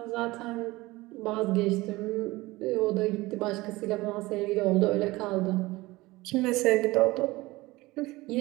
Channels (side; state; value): left; quieter; 20.3 dB